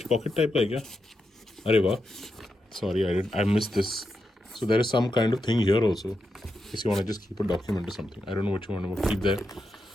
pocket type का है क्या? अरे वाह, sorry I miss this. So there is some kind of thing here also. If you want to just keep a document or something, I don't know what you want to keep there,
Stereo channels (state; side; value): normal; both; correlation 0.86